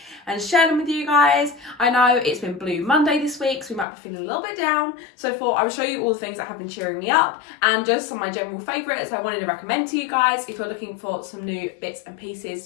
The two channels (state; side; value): drops out; right; at 3.9 s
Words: and share them with you guys. I know it's been Blue Monday this week, so we might be feeling a little bit down, so I thought I would show you all the things that have been cheering me up and just some of my general favourites I wanted to recommend to you guys if you're looking for some new bits and